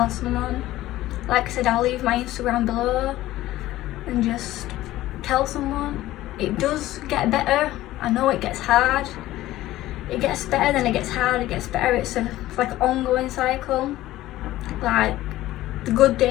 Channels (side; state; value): right; quieter; 15.6 dB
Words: someone. Like I said, I'll leave my Instagram below, and just tell someone. it does get better. I know it gets hard. It gets better, then it gets hard, it gets better. It's like an ongoing cycle. Like, the good